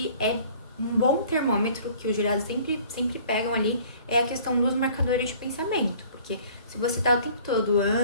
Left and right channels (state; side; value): inverted; both; correlation -0.52